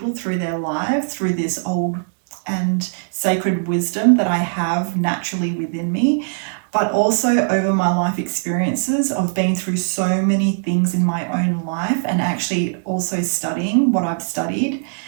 through their lives, through this old and sacred wisdom that I have naturally within me. But also over my life experiences of being through so many things in my own life, and actually also studying what I've studied,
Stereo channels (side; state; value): left; silent; digital silence